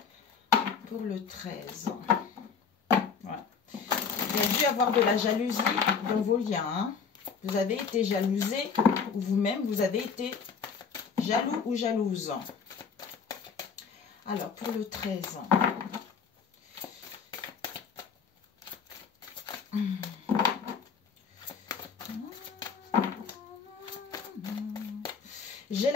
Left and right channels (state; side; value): quieter; right; 5.9 dB